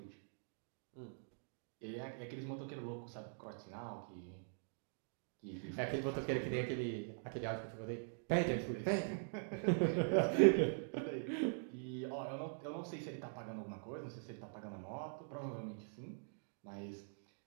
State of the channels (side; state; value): left; silent; digital silence